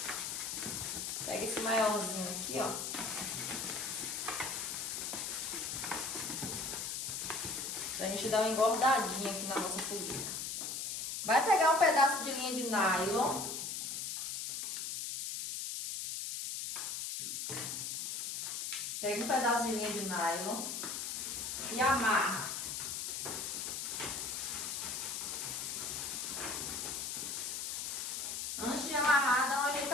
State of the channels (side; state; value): left; noise; hiss, 3 dB below the sound